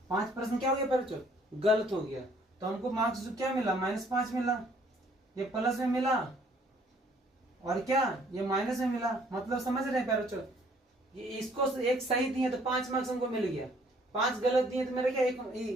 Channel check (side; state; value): both; normal; correlation 0.61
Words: 5 प्रश्न क्या हो गया प्यारे बच्चों, गलत हो गया, तो हमको मार्क्स जो क्या मिला, -5 मिला। ये प्लस में मिला और क्या ये माइनस में मिला, मतलब समझ रहे हैं प्यारे बच्चों, ये इसको एक सही दिए तो 5 मार्क्स हमको मिल गया, 5 गलत दिए तो मेरा क्या एक